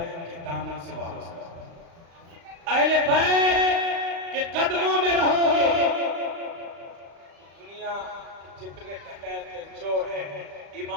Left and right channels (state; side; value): late; left; 35 ms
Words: کے دامن سے وابستہ، اہل بیت کے قدموں میں رہو گے، دنیا جتنے ڈکیت چور ہیں،